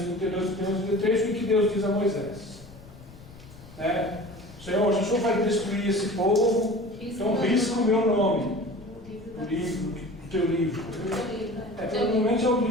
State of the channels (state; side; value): noise; left; rumble, 19 dB below the sound